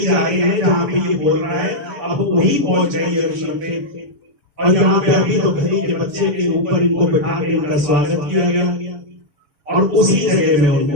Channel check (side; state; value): left; late; 6.9 ms